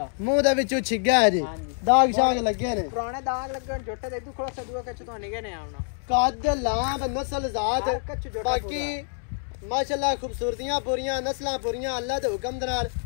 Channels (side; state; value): right; silent; 57 dB below the other